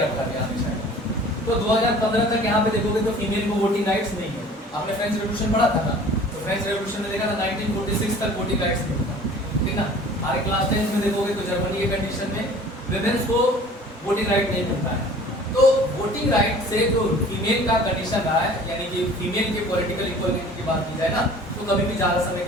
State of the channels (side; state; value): both; normal; correlation 0.47